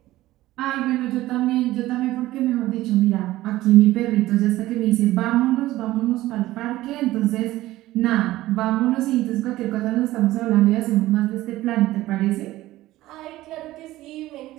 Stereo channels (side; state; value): left; quieter; 16.3 dB